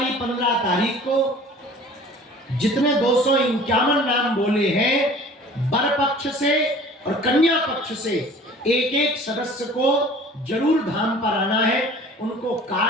15 तारीख को जितने 251 नाम बोले हैं, वर पक्ष से और कन्या पक्ष से एक एक सदस्य को जरूर धाम पर आना है। उनको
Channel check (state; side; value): normal; both; correlation 0.46